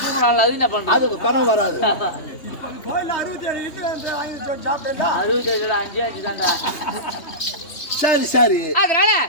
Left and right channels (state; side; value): late; right; 3.2 ms